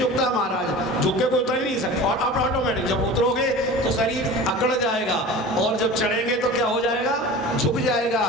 महाराज, झुक के कोई उतर ही नहीं सकता। और अब ऑटोमेटिक जब उतरोगे तो शरीर अकड़ जाएगा, और जब चढ़ेंगे तो क्या हो जाएगा? झुक जाएगा।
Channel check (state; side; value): normal; both; correlation 0.37